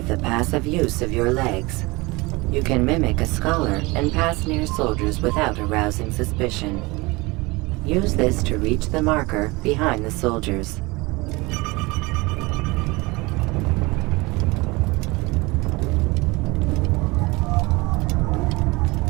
the passive use of your legs. You can mimic a scholar and pass near soldiers without arousing suspicion. Use this to reach the marker behind the soldiers.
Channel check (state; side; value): quieter; left; 23.8 dB